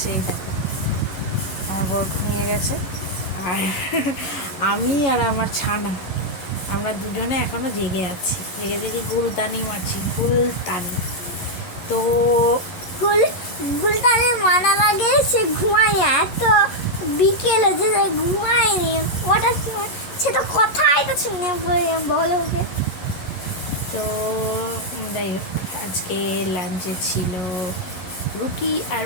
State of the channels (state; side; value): late; right; 11 ms